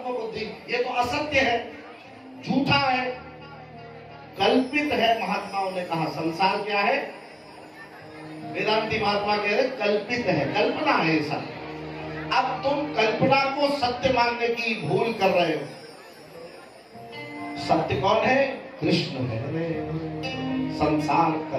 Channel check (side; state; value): both; identical; correlation 1.00